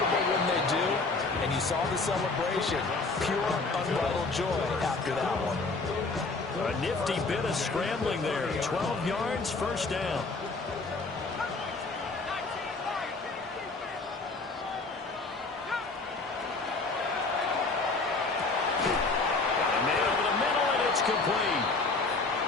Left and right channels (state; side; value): quieter; right; 3.7 dB